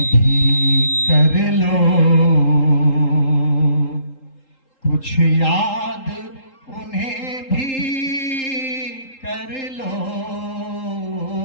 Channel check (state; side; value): late; right; 3.8 ms